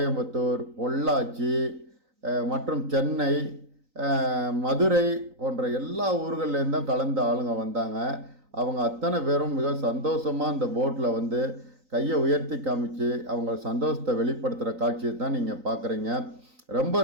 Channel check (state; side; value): late; left; 3.9 ms